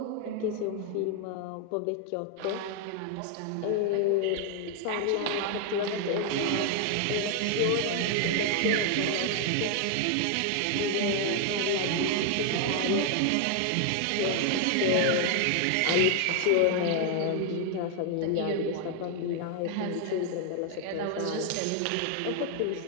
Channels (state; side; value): different; both; correlation 0.00